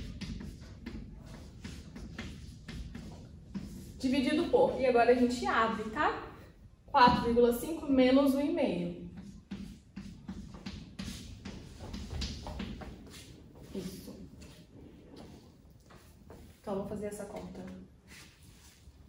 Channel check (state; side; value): identical; both; correlation 1.00